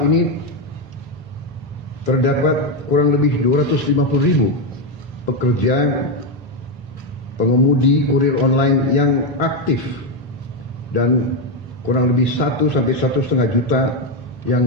ini terdapat kurang lebih 250.000 pekerja pengemudi kurir online yang aktif dan kurang lebih 1 sampai 1,5 juta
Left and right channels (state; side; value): normal; both; correlation 0.08